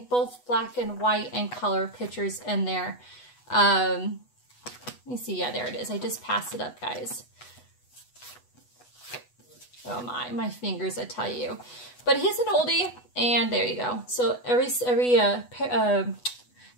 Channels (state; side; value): late; right; 8.1 ms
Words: both black and white and color pictures in there. Let me see. Yeah, there it is. I just passed it up, guys. Oh my fingers, I tell you. But he's an oldie. And there you go. So every